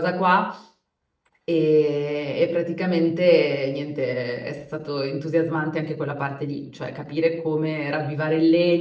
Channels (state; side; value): identical; both; correlation 1.00